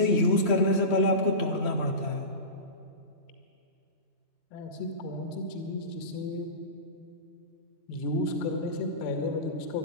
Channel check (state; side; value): late; right; 3.1 ms